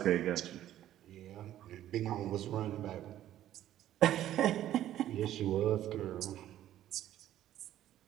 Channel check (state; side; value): quieter; left; 12.5 dB